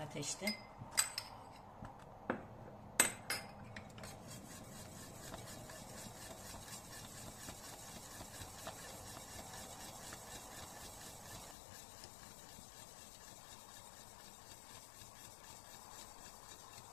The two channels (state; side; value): drops out; right; at 11.6 s